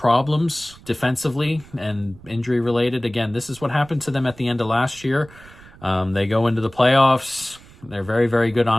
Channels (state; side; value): noise; right; rumble, 22 dB below the sound